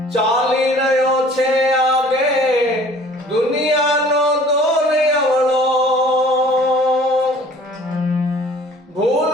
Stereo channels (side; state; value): both; normal; correlation 0.51